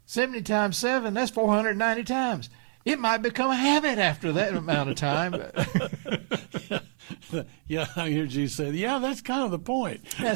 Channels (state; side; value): silent; left; 58 dB below the other